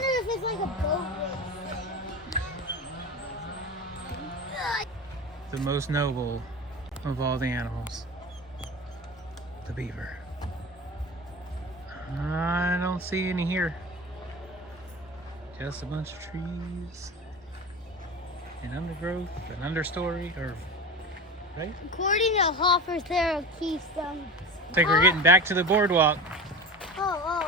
if it's like a boat race. The most noble of all the animals, the beaver. I don't see any here. Just a bunch of trees and undergrowth and understory, or right? According to Hoffer's, there are keystones. I think we're getting back to the boardwalk.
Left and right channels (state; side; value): normal; both; correlation 0.29